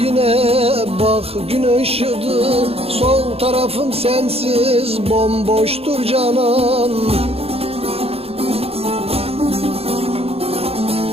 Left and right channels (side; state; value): left; late; 0.29 ms